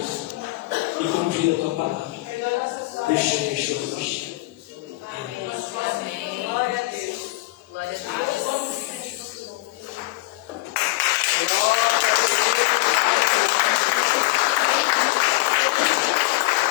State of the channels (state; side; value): quieter; right; 21.4 dB